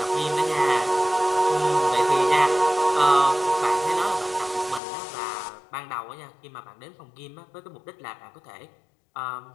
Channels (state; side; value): drops out; right; at 4.8 s